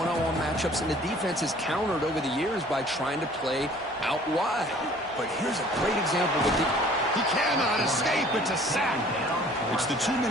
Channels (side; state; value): both; normal; correlation 0.52